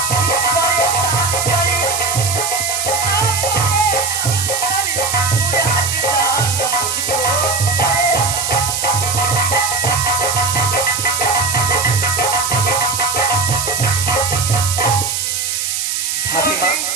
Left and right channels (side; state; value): right; noise; hiss, 1 dB below the sound